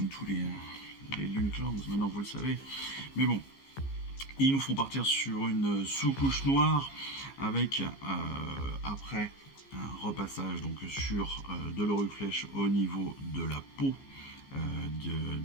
tous les Lune Clans, maintenant vous le savez. Mais bon, ils nous font partir sur une sous-couche noire avec après un repassage donc sur de l'Auriflèche au niveau de la peau du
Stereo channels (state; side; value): late; right; 15 ms